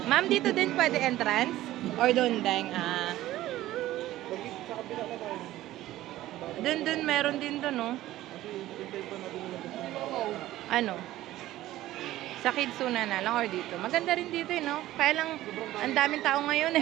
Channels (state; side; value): quieter; left; 15.2 dB